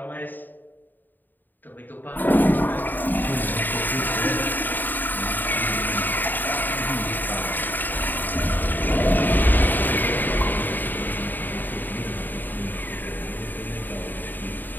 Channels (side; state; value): right; late; 0.090 ms